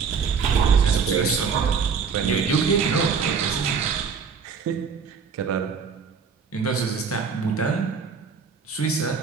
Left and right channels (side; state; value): left; quieter; 5.9 dB